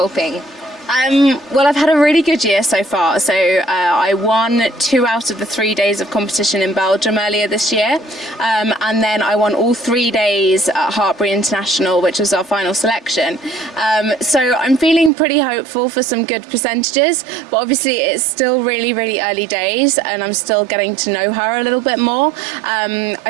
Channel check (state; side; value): drops out; left; at 15.1 s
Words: Well, I've had a really good year so far. So I won 2 out of the 3 days of competition in Belgium earlier this year. And then I won all 3 days at Hartbury International, which was our final selection. So I'm feeling pretty hopeful for some good percentages, but obviously it's still really, really early days and I'm still getting to know her a little bit more.